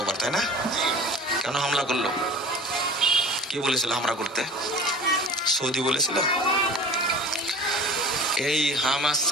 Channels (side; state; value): both; normal; correlation 0.39